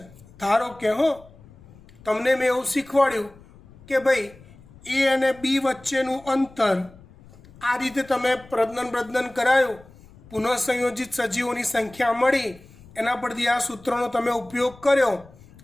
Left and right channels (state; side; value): noise; left; rumble, 23 dB below the sound